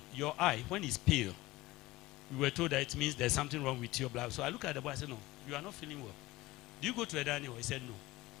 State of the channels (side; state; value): right; quieter; 18.8 dB